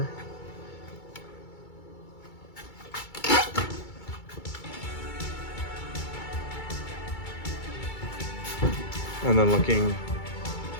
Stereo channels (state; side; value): late; right; 2.3 ms